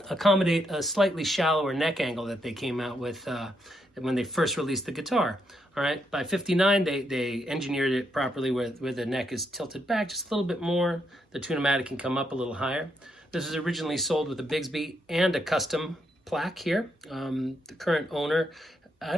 accommodate a slightly shallower neck angle that they came out with when they first released the guitar. All right, by 59, they engineered it properly where the neck is tilted back just a little bit more. The tunematic can come up a little higher. This was originally sold with a Bigsby and a custom plaque here. The current owner, I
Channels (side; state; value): both; normal; correlation 0.78